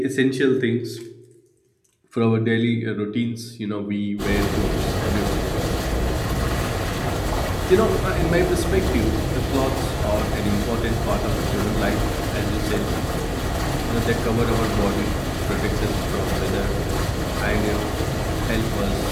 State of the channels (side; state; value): both; identical; correlation 1.00